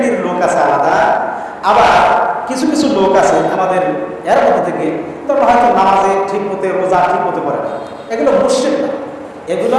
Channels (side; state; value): both; identical; correlation 1.00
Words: লোক আছে আলাদা। আবার কিছু কিছু লোক আছে আমাদের এর মধ্যে থেকে, তবে হয়তো নামাজে ঠিক মতো, রোজা ঠিক মতো করে না, এগুলো মুশরিক না, এগুলো